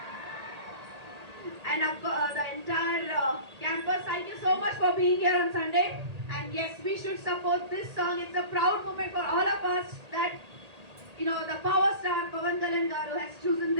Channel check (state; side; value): late; left; 1.8 ms